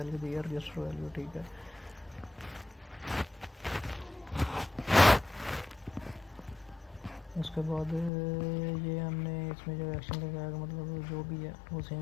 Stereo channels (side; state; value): right; drops out; at 8.1 s